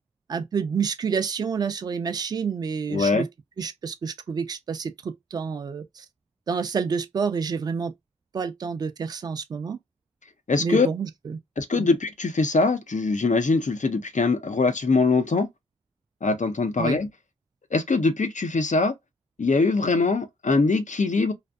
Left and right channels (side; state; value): both; normal; correlation 0.59